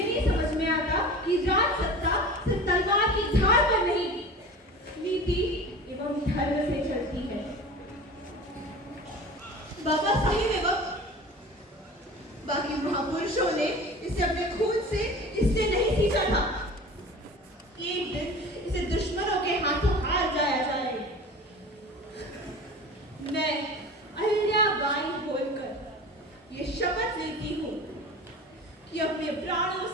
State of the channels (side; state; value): both; normal; correlation 0.37